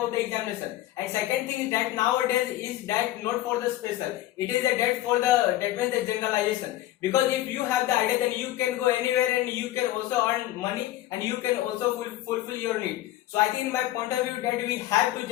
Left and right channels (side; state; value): right; quieter; 14.9 dB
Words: the examination. And second thing is that nowadays is that not for the special, it is a that for the, that means the generalization. Because if you have the idea, then you can go anywhere and you can also earn money and you can also fulfill your need. So I think in my point of view that we have to